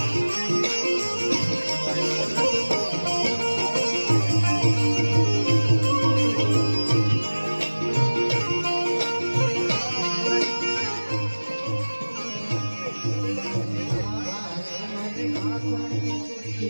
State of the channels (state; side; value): inverted; both; correlation -1.00